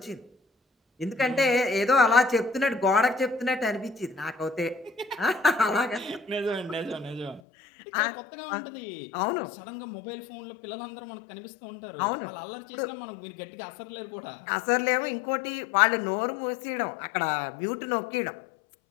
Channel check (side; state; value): right; drops out; at 7.4 s